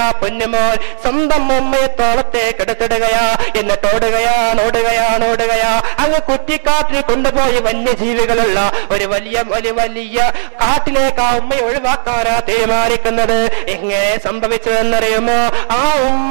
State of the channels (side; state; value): left; silent; digital silence